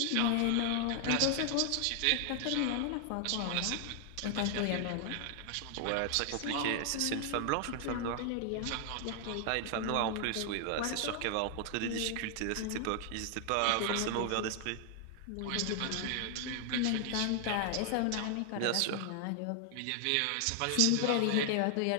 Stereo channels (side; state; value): both; different; correlation 0.00